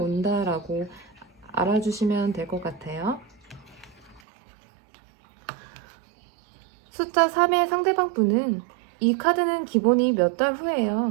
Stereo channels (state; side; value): drops out; left; at 4.2 s